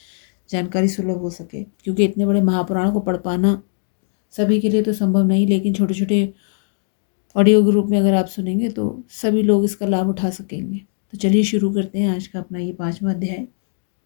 जानकारी सुलभ हो सके। क्योंकि इतने बड़े महापुराण को पढ़ पाना सभी के लिए तो संभव नहीं, लेकिन छोटे छोटे ऑडियो ग्रुप में अगर आप सुनेंगे तो सभी लोग इसका लाभ उठा सकेंगे। तो चलिए शुरू करते हैं आज का अपना ये 5वां अध्याय।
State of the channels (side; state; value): right; silent; digital silence